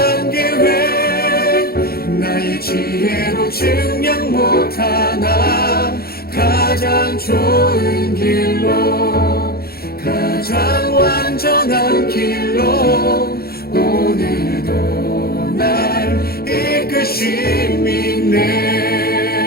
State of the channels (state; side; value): late; right; 0.44 ms